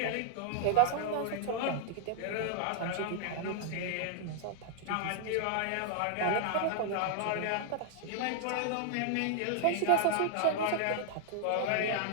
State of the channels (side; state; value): both; different; correlation 0.00